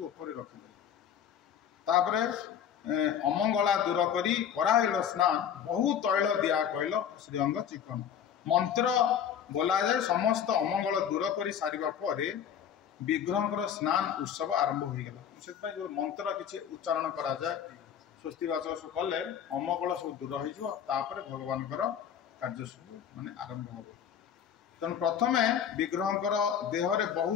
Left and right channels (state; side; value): quieter; right; 8.7 dB